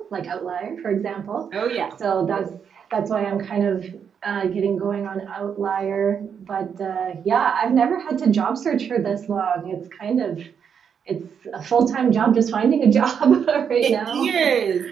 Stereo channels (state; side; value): quieter; left; 7.3 dB